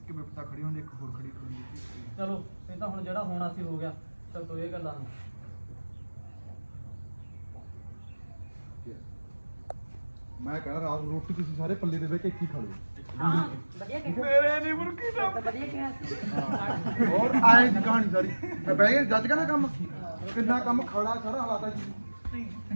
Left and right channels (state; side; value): inverted; both; correlation -1.00